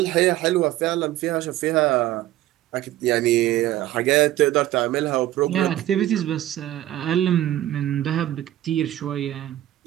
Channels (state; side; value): quieter; left; 14.2 dB